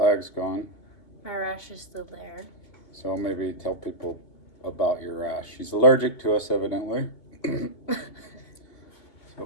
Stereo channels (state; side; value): late; right; 2.8 ms